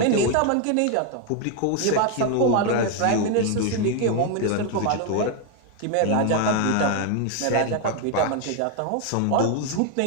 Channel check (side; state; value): both; different; correlation 0.01